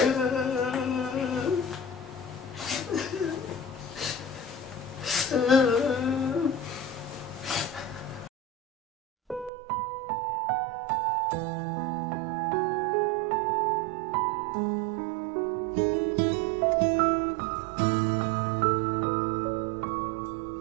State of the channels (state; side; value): drops out; left; at 9.5 s